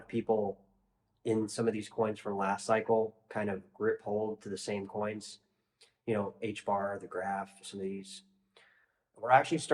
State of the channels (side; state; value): both; identical; correlation 1.00